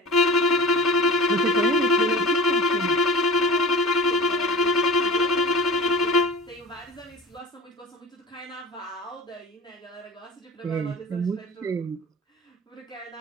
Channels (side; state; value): both; normal; correlation 0.37